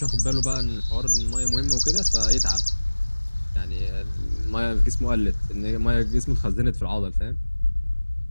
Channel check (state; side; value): inverted; both; correlation -1.00